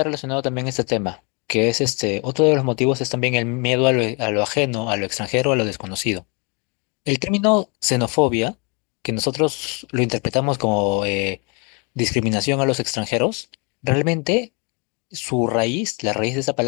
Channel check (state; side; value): quieter; right; 32.4 dB